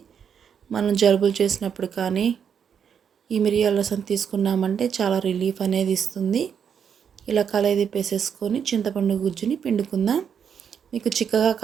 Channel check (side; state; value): left; quieter; 7.5 dB